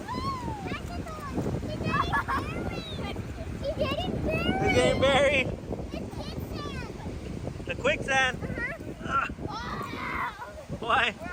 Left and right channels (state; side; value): identical; both; correlation 1.00